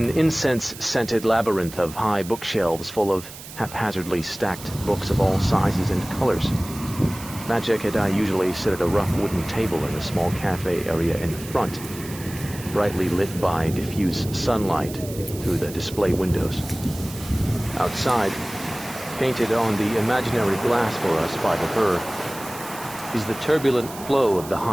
incense-scented labyrinth of high bookshelves full of haphazardly stacked books of all sizes and colors. Machek and I usually sit at a rough wooden table in a small cafe area in the front, brightly lit by diffuse sunlight through the display windows. Outside, painted on the imaginary glass for us by the burr, is the turbulent flow of the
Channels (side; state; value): right; noise; hiss, 14 dB below the sound